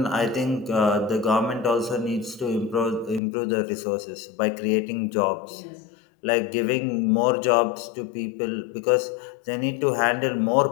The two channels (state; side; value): drops out; right; at 3.2 s